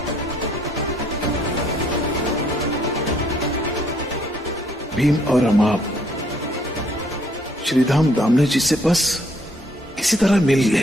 भीम और अमाप श्रीधाम दामने जी से बस किसी तरह मिल गए।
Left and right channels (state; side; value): normal; both; correlation 0.65